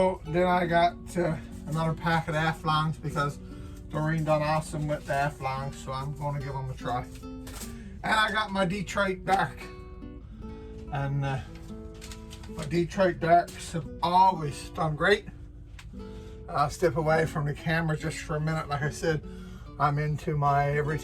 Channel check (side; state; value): both; identical; correlation 1.00